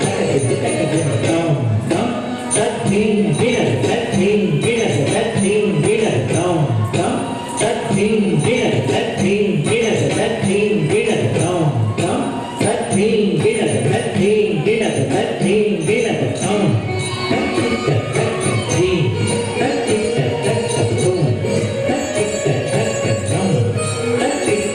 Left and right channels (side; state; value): both; identical; correlation 1.00